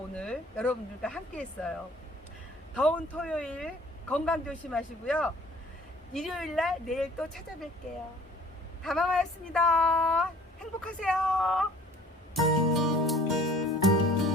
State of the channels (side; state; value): both; normal; correlation 0.52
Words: 여러분들과 함께 했어요. 더운 토요일 건강 조심하시고요. 일요일날 내일 또 찾아뵐게요. 다마마였습니다. 행복하세요.